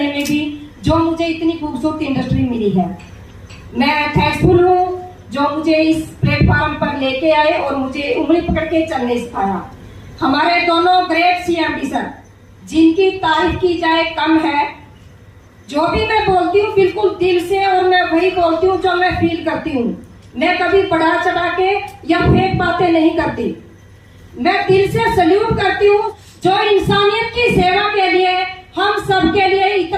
में भी, जो मुझे इतनी खूबसूरत इंडस्ट्री मिली है। मैं थैंकफुल हूँ जो मुझे इस प्लेटफॉर्म पर लेके आए और मुझे उंगली पकड़ के चलने सिखाया। हमारे दोनों ग्रेट सीएमडी सर, जिनकी तारीफ की जाए कम है। जो भी मैं बोलती हूँ बिल्कुल दिल से, और मैं वही बोलती हूँ जो मैं फील करती हूँ। मैं कभी बढ़ा चढ़ा के या फेक बातें नहीं करती। मैं दिल से सल्यूट करती हूँ जो इंसानियत की सेवा के लिए, हम सब के लिए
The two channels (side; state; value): both; identical; correlation 1.00